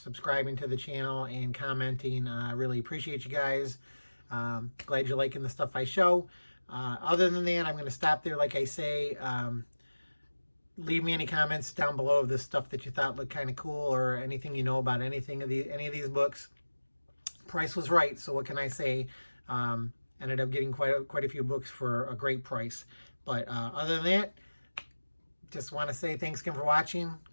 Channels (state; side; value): inverted; both; correlation -1.00